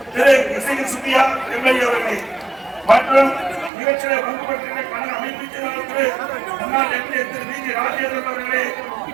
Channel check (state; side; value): drops out; left; at 3.7 s